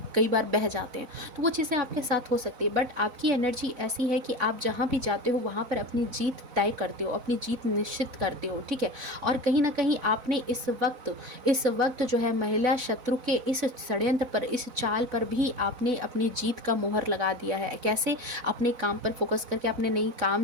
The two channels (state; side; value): late; left; 4.0 ms